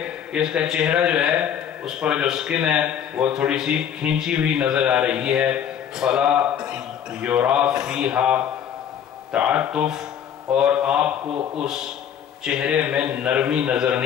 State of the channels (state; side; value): quieter; right; 9.0 dB